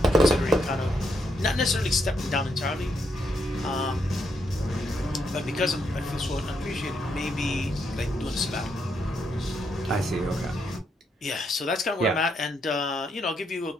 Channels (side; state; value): both; normal; correlation 0.78